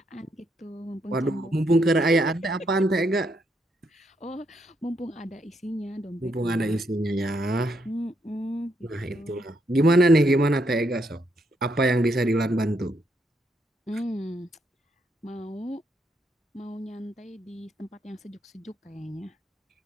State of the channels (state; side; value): normal; both; correlation 0.76